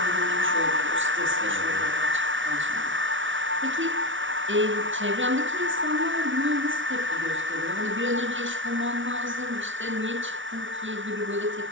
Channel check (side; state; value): left; late; 0.56 ms